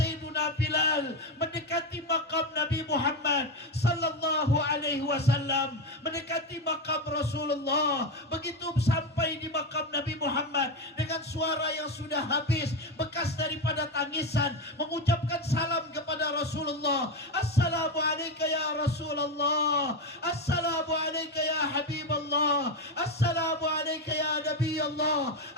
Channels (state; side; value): normal; both; correlation 0.13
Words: Bilal mendekati makam Nabi Muhammad sallallahu alaihi wasallam, mendekati makam Rasulullah. Begitu sampai di makam Nabi Muhammad, dengan suara yang sudah habis, bekas daripada tangisan, mengucapkan salam kepada Rasulullah. Assalamu alayka ya Rasulullah, assalamu alayka ya Habiballah, assalamu alayka ya Nabi Allah,